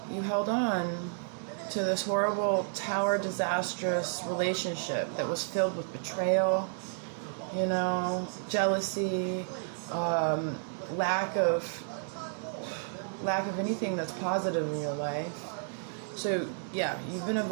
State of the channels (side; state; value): left; silent; digital silence